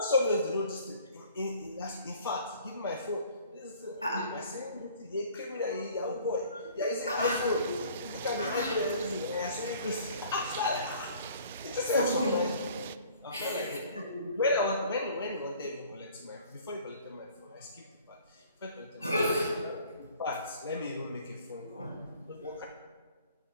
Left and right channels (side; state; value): both; inverted; correlation -0.52